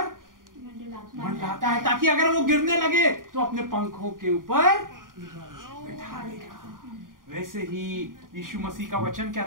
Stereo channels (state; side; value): late; left; 0.90 ms